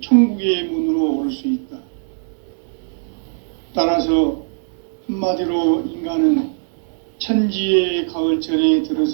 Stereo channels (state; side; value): silent; left; 66 dB below the other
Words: 천국의 문으로 오를 수 있다. 따라서 한마디로 인간은 천지의 가을철에